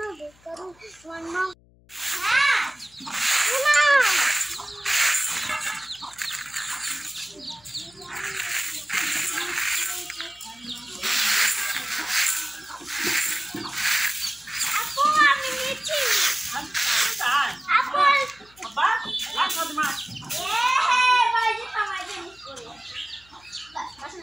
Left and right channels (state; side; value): noise; left; hum, 29 dB below the sound